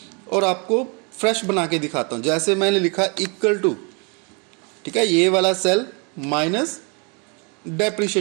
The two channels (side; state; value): left; quieter; 33.5 dB